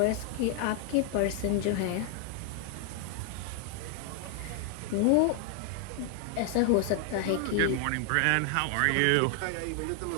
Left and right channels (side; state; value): both; different; correlation 0.00